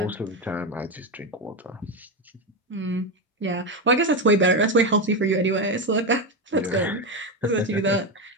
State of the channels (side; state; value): both; normal; correlation 0.13